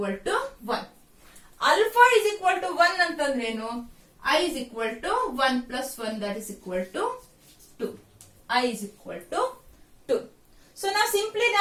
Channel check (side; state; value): both; identical; correlation 1.00